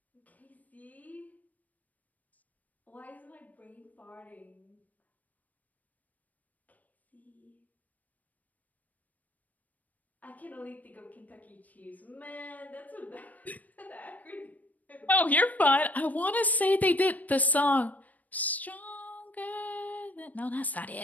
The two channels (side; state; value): right; late; 0.077 ms